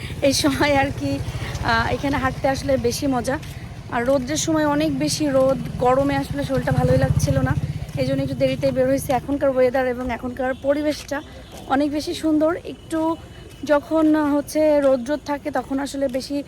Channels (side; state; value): both; identical; correlation 1.00